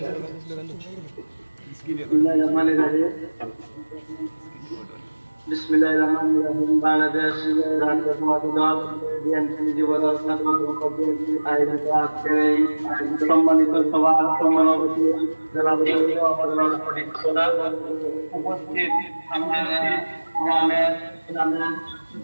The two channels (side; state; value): both; inverted; correlation -1.00